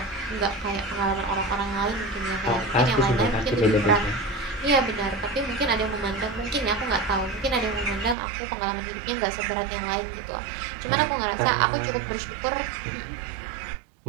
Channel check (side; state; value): left; drops out; at 8.2 s